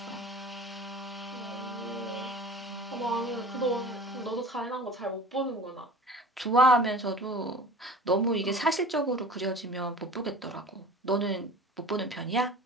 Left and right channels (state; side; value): normal; both; correlation 0.40